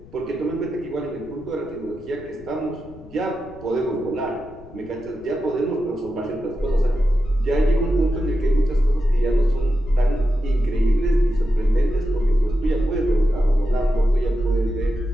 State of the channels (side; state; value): left; noise; rumble, 20 dB below the sound